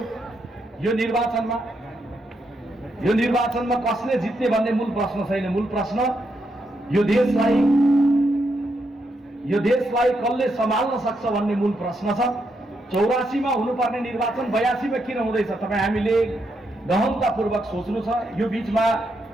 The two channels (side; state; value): both; normal; correlation 0.80